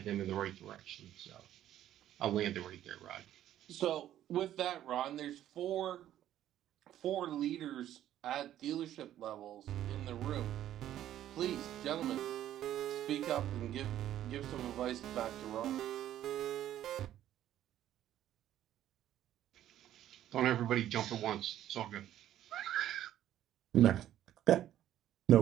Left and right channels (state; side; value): quieter; left; 12.1 dB